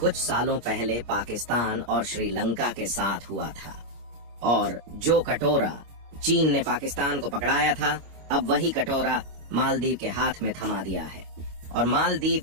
सालों पहले पाकिस्तान और श्रीलंका के साथ हुआ था। और जो कटोरा चीन ने पाकिस्तान को पकड़ाया था, अब वही कटोरा मालदीव के हाथ में थमा दिया है। और मालदीव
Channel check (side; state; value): left; late; 25 ms